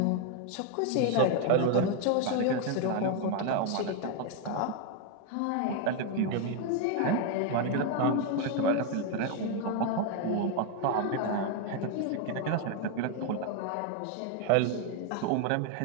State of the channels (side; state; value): both; different; correlation 0.01